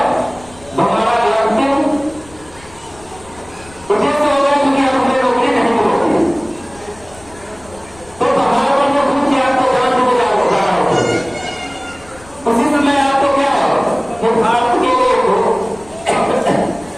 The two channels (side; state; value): left; noise; rumble, 24 dB below the sound